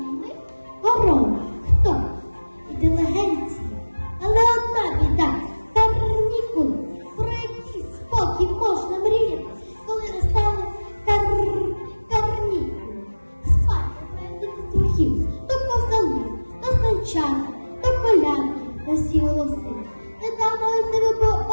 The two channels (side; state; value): both; inverted; correlation -1.00